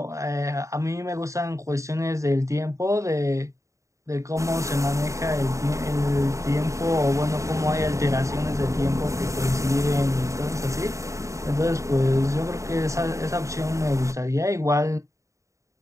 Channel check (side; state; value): left; late; 0.15 ms